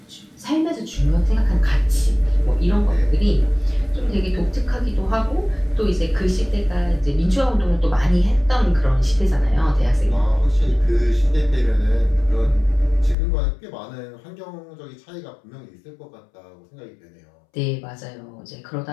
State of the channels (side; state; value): right; drops out; at 13.2 s